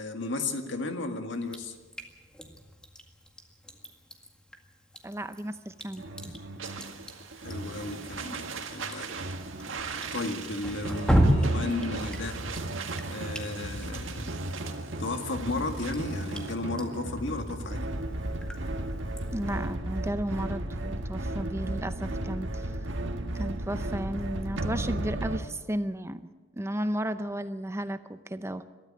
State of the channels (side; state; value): both; normal; correlation 0.70